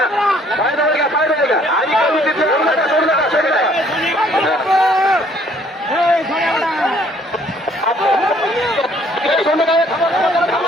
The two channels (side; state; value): both; normal; correlation 0.61